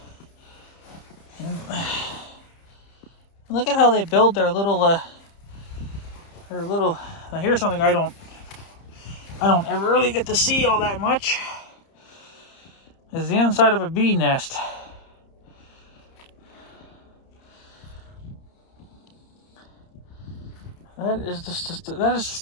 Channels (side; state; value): right; late; 30 ms